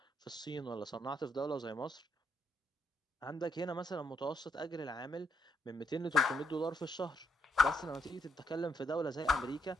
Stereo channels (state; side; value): normal; both; correlation 0.74